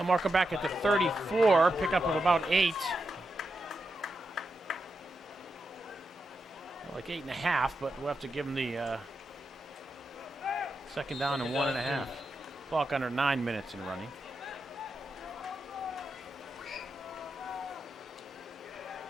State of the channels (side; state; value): both; normal; correlation 0.87